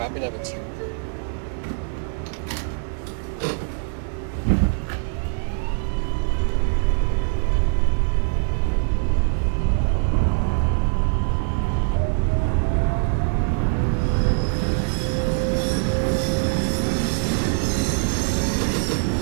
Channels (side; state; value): left; silent; 64 dB below the other